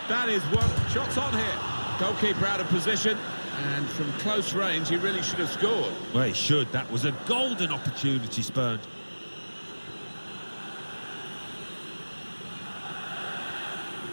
That is one. Shots on here. Goalkeeper out of position. And from close range, he really should have scored. Well, he should. That was a golden opportunity spurned.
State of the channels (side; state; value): both; inverted; correlation -1.00